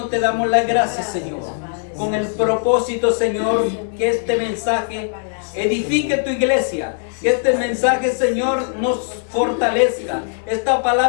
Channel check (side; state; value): right; silent; digital silence